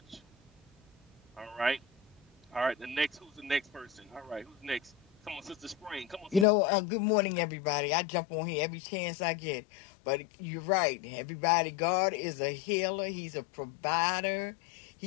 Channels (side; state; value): right; drops out; at 6.5 s